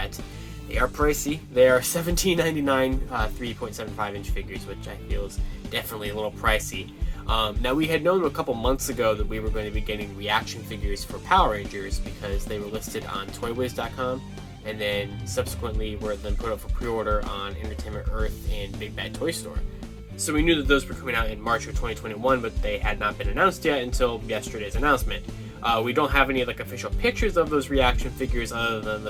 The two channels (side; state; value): both; identical; correlation 1.00